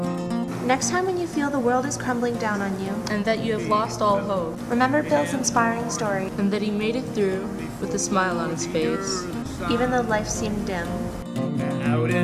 Next time when you feel the world is crumbling down on you, And that you have lost all hope, remember Bill's inspiring story, and that he made it through with a smile on his face. even though life seemed dim. Out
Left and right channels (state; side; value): identical; both; correlation 1.00